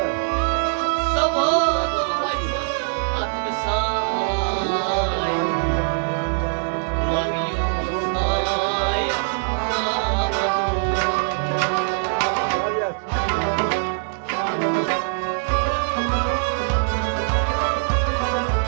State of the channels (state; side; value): silent; left; digital silence